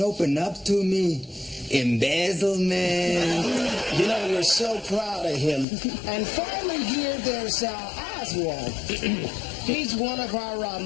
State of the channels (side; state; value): right; drops out; at 5.7 s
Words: opened up to me. Embezzlement. You know, we're so proud of him. And finally here, there's Oswald. He's one of our